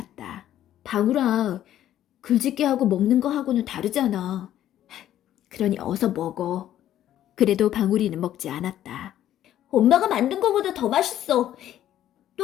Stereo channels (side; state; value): right; quieter; 12.0 dB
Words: 방울아, 글짓기하고 먹는 거하고는 다르잖아. 그러니 어서 먹어. 그래도 방울이는 먹지 않았다. 엄마가 만든 거보다 더 맛있어.